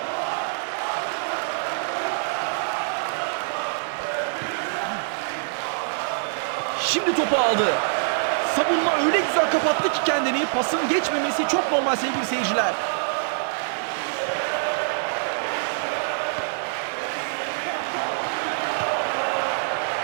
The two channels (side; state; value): left; silent; digital silence